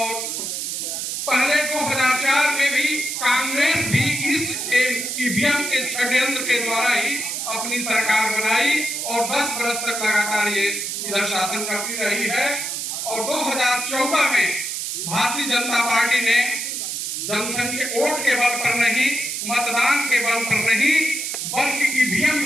पहले 2004 में भी कांग्रेस भी इस ईवीएम के षड्यंत्र के द्वारा ही अपनी सरकार बनाई और 10 वर्ष तक लगातार ये इधर शासन करती रही है। और 2014 में भारतीय जनता पार्टी ने जनसंख्या वोट के बल पर नहीं, मतदान के बल पर नहीं, बल्कि ईवीएम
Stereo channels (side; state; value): right; noise; hiss, 3 dB below the sound